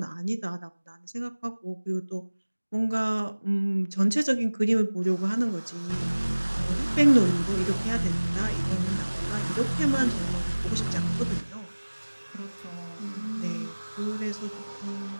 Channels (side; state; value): both; inverted; correlation -1.00